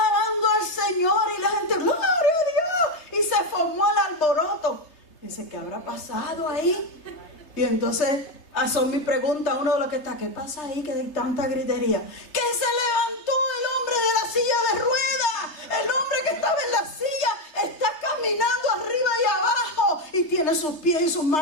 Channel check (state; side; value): late; right; 3.3 ms